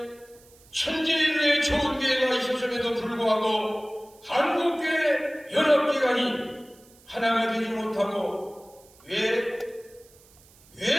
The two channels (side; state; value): right; noise; hiss, 27 dB below the sound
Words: 천재인의 좋은 기회가 있었음에도 불구하고 한국교회 연합기관이 하나가 되지 못하고 왜